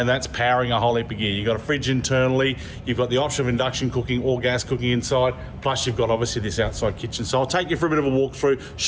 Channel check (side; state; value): both; identical; correlation 1.00